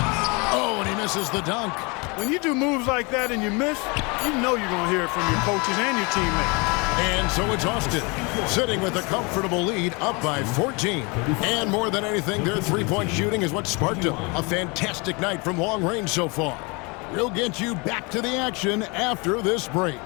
Oh, and he misses the dunk. When you do moves like that and you miss, you know you're going to hear it from your coaches and your teammates. And so it's Austin, sitting with a comfortable lead, up by 14. And more than anything, their three-point shooting is what sparked them. A fantastic night from long range so far. We'll get you back to the action after this break.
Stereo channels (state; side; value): quieter; right; 28.9 dB